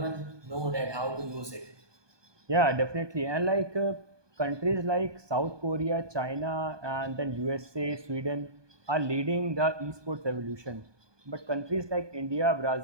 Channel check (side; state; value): left; late; 1.2 ms